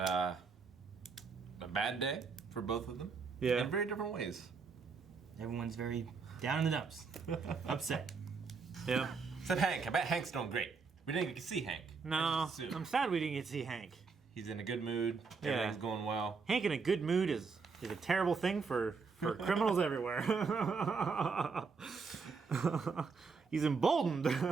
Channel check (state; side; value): quieter; left; 5.0 dB